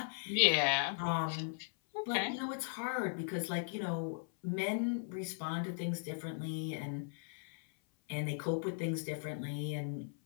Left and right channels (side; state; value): right; silent; 53 dB below the other